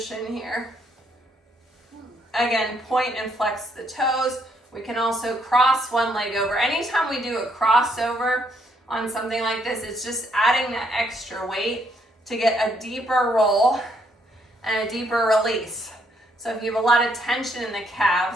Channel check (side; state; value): both; normal; correlation 0.72